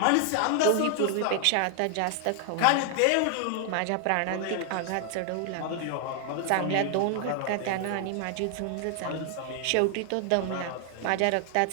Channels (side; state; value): both; different; correlation 0.00